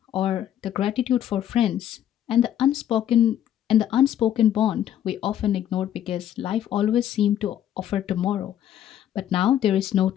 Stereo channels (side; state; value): right; quieter; 10.9 dB